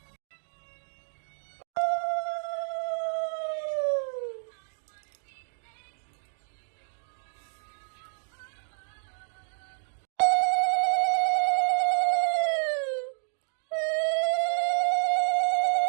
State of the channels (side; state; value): left; silent; digital silence